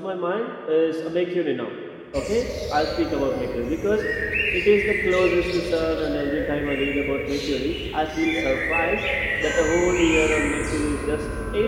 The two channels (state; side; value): identical; both; correlation 1.00